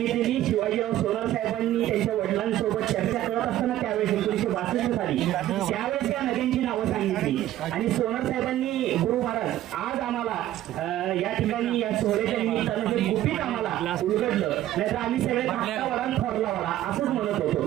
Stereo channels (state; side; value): quieter; left; 13.6 dB